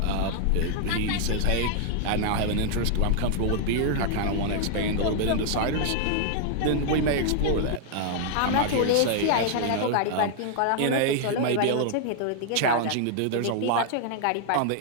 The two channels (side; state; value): both; different; correlation 0.00